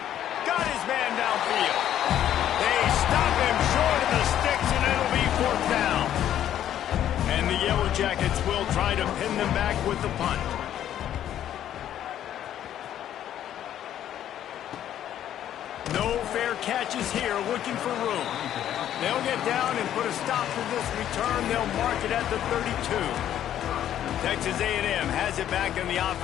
Got his man downfield. They stop him short of the sticks, and it'll be 4th down. And the Yellow Jackets will try to pin them back with the punt. No fair catches here, looking for room. They'll get down and put a stop to this return. They'll mark it at the 32. Texas A&M has it back in the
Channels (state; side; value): quieter; right; 11.1 dB